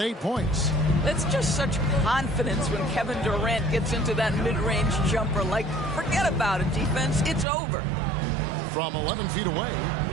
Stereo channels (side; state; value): left; drops out; at 7.5 s